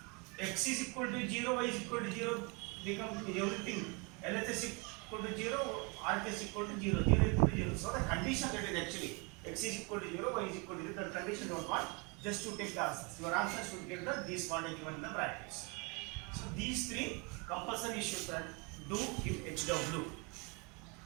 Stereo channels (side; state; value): left; quieter; 30.8 dB